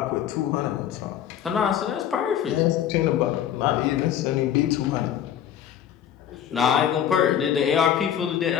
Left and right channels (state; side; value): quieter; right; 9.9 dB